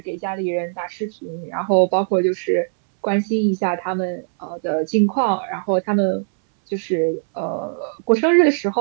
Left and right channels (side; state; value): left; silent; 64 dB below the other